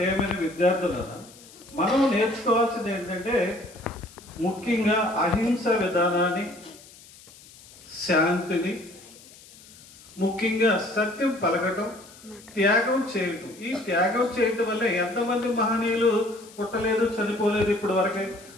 విద్యార్థులను మనం నేర్చుకోవాల్సింది ఏంటంటే ముఖ్యంగా అహింస విధానాన్ని, శాంతిని, ముఖ్యంగా సత్యం పలకటం, త్యాగం చేయటం. ఈ త్యాగం చేయటం వల్ల ఎంతమంది మహనీయులు పుట్టలేదు, చనిపోలేదు ఇప్పటి వరకే.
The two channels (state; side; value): noise; left; hiss, 22 dB below the sound